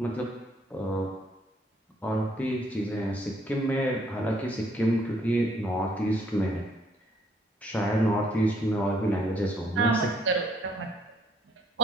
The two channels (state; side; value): normal; both; correlation 0.68